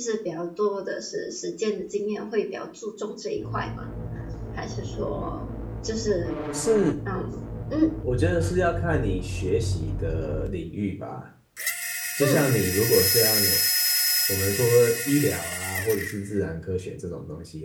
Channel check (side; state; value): both; identical; correlation 1.00